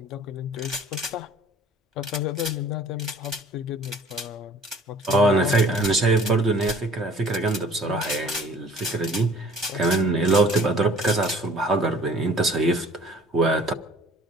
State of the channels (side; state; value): both; normal; correlation 0.52